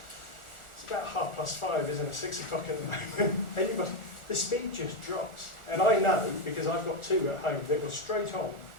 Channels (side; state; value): right; late; 1.4 ms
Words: it's about 5:30, isn't it? 6 o'clock at the moment. The speed just drops. And I know, because I've got 2 at home, that were straight on,